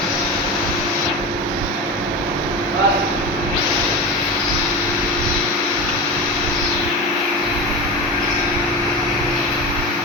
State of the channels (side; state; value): both; normal; correlation 0.25